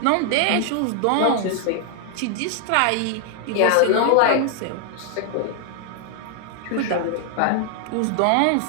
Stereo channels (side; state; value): both; different; correlation 0.00